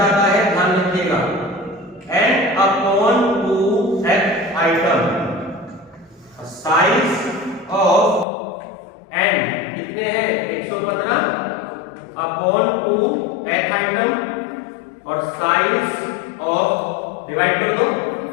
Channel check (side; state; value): right; drops out; at 8.2 s